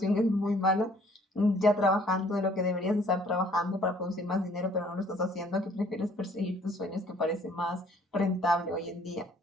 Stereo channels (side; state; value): both; normal; correlation 0.59